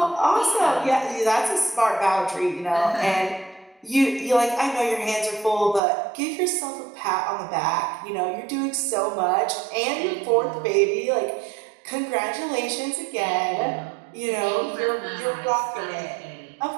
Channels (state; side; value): drops out; left; at 5.8 s